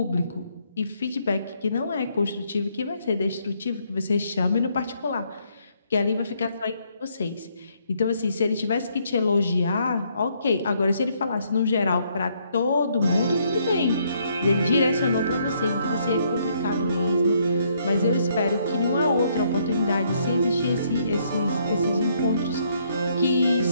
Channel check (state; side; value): inverted; both; correlation -0.70